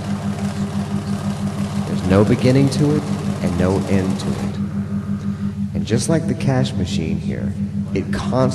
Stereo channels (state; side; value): identical; both; correlation 1.00